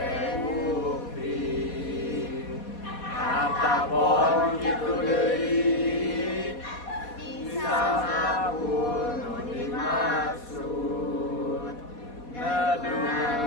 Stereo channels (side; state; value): right; late; 4.2 ms